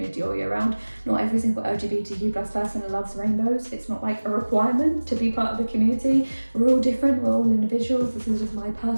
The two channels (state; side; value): inverted; both; correlation -1.00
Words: all year round. Not every single LGBTQ+ person loves rainbows. It's not like a requirement to be part of the community. We're all different, we're all individuals. This is just my